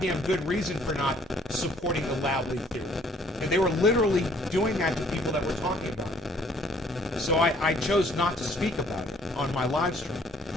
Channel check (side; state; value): both; normal; correlation 0.61